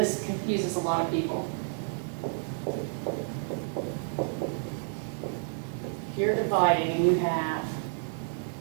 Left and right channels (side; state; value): left; silent; 58 dB below the other